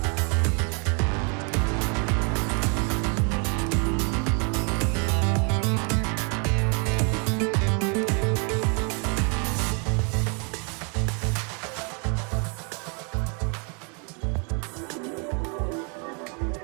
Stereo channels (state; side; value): quieter; left; 36.6 dB